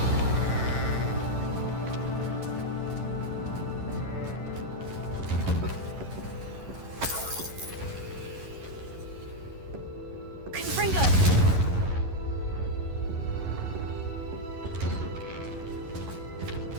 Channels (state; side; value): late; left; 11 ms